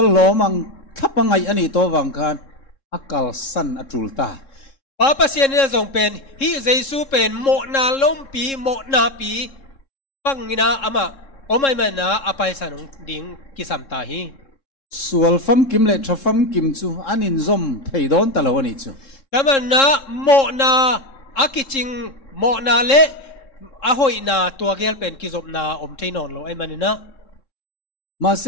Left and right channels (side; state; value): right; late; 3.7 ms